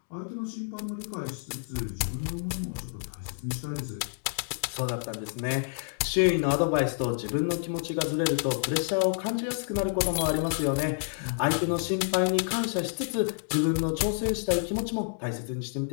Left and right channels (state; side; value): silent; right; digital silence